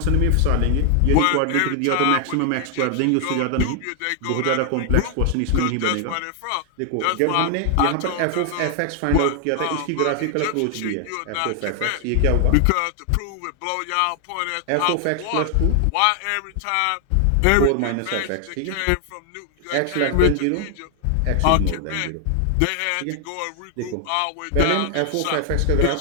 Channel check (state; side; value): different; both; correlation 0.00